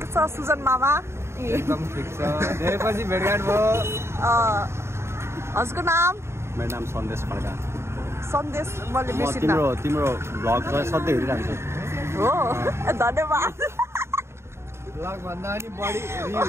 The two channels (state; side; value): late; left; 0.13 ms